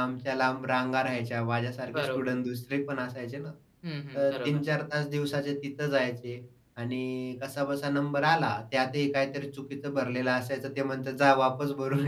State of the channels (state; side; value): identical; both; correlation 1.00